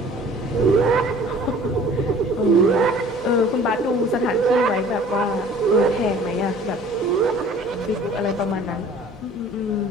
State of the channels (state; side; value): noise; left; hum, 26 dB below the sound